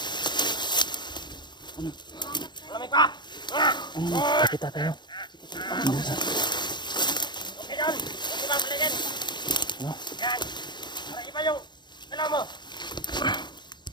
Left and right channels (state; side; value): late; right; 0.21 ms